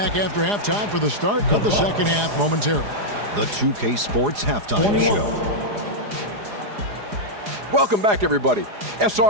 after halftime for the start of the second half momentarily. The 2K Sports Halftime Show. Welcome back, everybody.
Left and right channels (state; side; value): late; left; 4.9 ms